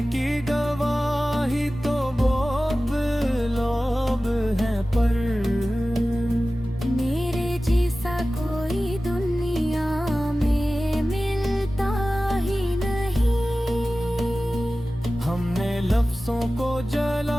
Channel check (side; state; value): both; normal; correlation 0.96